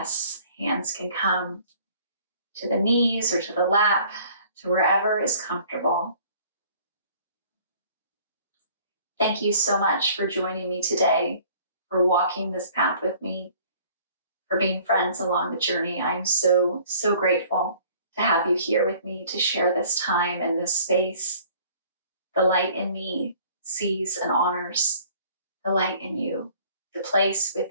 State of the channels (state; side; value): inverted; both; correlation -0.54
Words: Hands can come to the knees or to the lap, to wherever is comfortable. Thank you so much for joining me today, for walking this path with me, for being friends along the journey. I'm so, so grateful to have you here with me to share this time and this space. The light in me sees and honors the light in you, the place